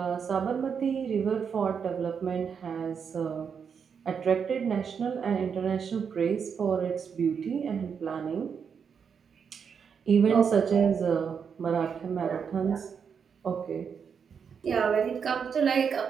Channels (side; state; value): left; quieter; 6.7 dB